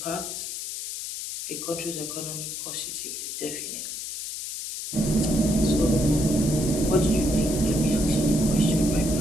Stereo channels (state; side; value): noise; left; hiss, 6 dB below the sound